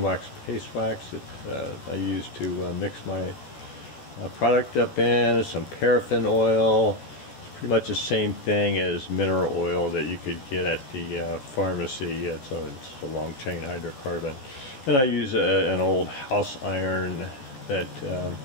paste wax that I use to mix my product up in. There's some paraffin oil. It's pretty much the same thing as mineral oil that you could get at the pharmacy. It's a long chain hydrocarbon. And I use an old house iron that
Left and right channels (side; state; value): right; late; 14 ms